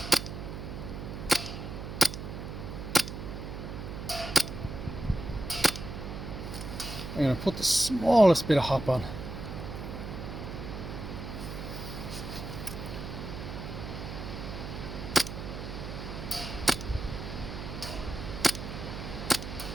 I'm going to put the smallest bit of hop on.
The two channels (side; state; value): right; noise; hum, 7 dB below the sound